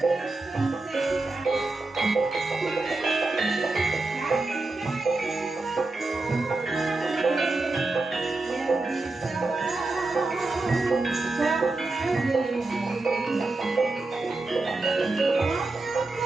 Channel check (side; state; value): left; quieter; 3.2 dB